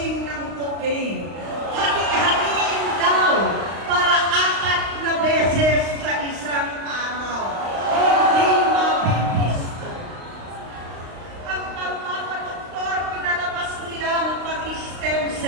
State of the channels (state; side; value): late; left; 35 ms